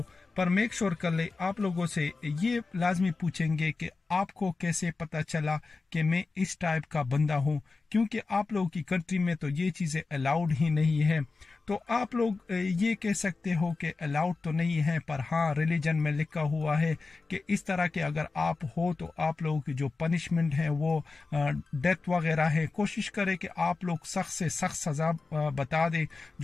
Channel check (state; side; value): quieter; right; 4.0 dB